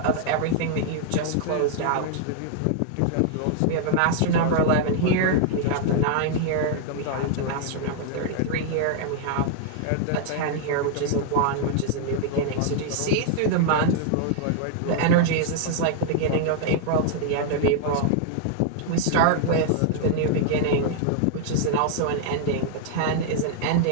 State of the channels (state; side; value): different; both; correlation -0.01